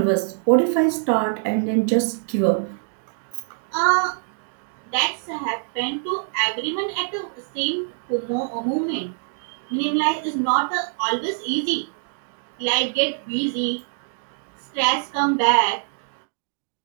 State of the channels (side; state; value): left; silent; digital silence